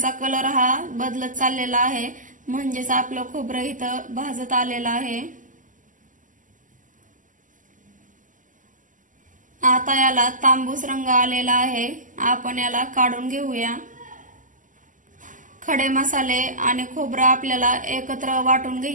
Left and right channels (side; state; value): left; late; 0.38 ms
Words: कलर हा बदलत चाललेला आहे, म्हणजेच आपलं खोबरं इथं भाजत आलेलं आहे। आता याला तांबूस रंग आलेला आहे। आपण याला काढून घेऊया। खडे मसाले आणि खोबरं आपल्याला एकत्र वाटून